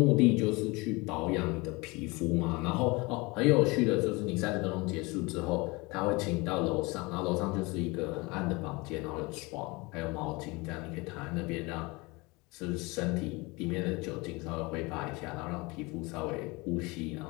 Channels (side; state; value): right; quieter; 25.0 dB